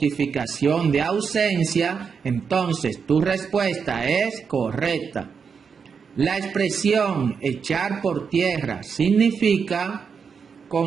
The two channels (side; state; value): left; quieter; 6.1 dB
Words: de ausencia, entonces tu respuesta es correcta. La expresión echar por tierra significa